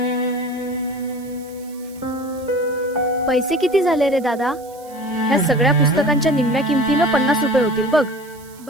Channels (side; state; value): right; noise; hiss, 23 dB below the sound